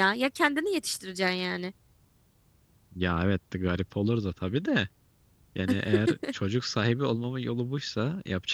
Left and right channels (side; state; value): both; identical; correlation 1.00